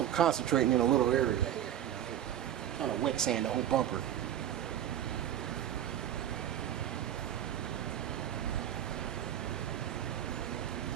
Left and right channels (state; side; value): quieter; left; 10.9 dB